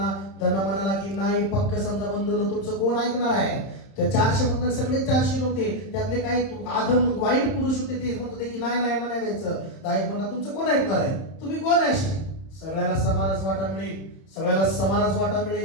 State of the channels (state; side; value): late; right; 31 ms